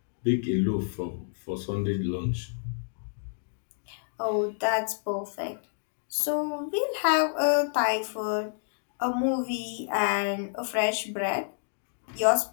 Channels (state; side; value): silent; right; digital silence